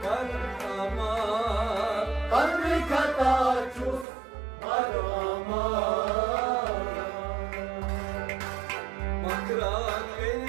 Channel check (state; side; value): drops out; left; at 4.0 s